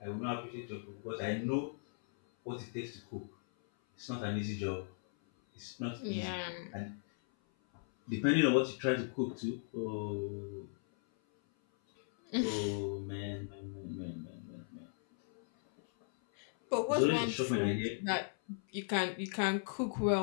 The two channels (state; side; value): silent; right; 53 dB below the other